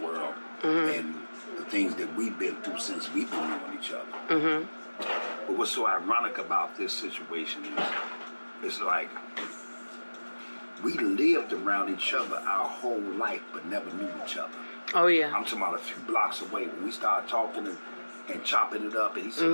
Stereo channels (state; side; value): inverted; both; correlation -1.00